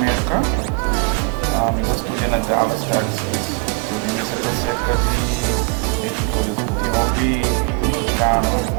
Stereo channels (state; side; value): quieter; left; 32.0 dB